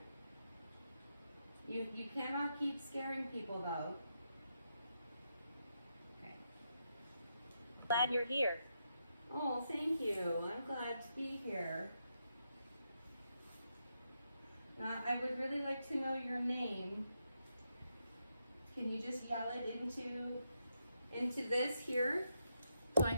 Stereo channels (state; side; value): inverted; both; correlation -0.83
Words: You cannot keep scaring people though. Okay. Glad you're here. Oh, thank you. I'm glad to be here. I would really like to know your name. Can you just yell it into this here? So I